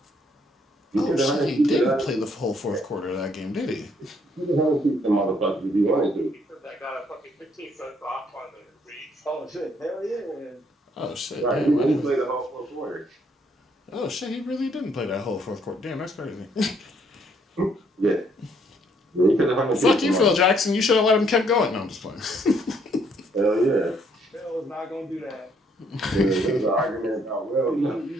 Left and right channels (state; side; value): normal; both; correlation 0.68